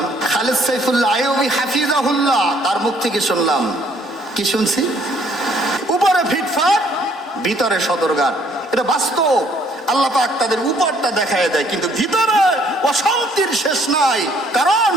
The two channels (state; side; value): normal; both; correlation 0.63